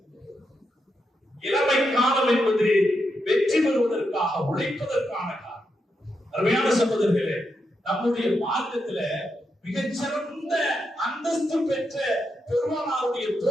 இளமை காலம் என்பது வெற்றி பெறுவதற்காக உழைப்பதற்கான காலம். அருமையான சகோதரர்களே, நம்முடைய மார்க்கத்துல மிகச்சிறந்த அந்தஸ்து பெற்ற பெருமானாருடைய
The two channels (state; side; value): normal; both; correlation 0.84